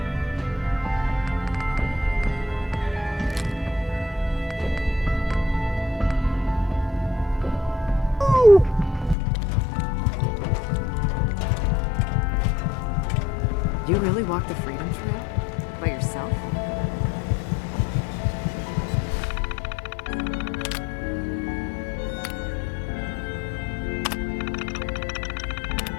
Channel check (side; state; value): right; drops out; at 9.2 s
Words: You really walked the Freedom Trail? By yourself?